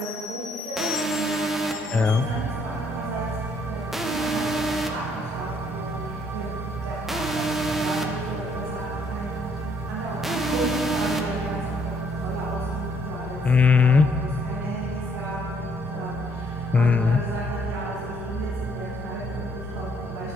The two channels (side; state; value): both; normal; correlation 0.67